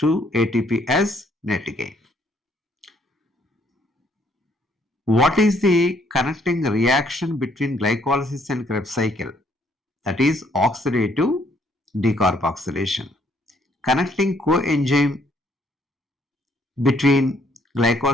ATP as net gain. What is the connecting reaction between glycolysis and Krebs cycle? That is oxidative decarboxylation. Connecting coenzyme between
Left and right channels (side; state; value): both; normal; correlation 0.67